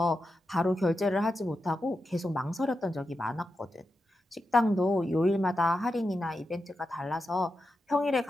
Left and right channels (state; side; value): normal; both; correlation 0.89